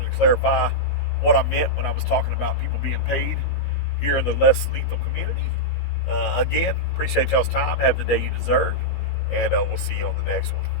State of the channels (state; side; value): late; right; 17 ms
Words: to clarify what I meant when I was talking about people being paid here in the less lethal community. Again, appreciate y'all's time. Have the day you deserve, and we'll see you on the next one.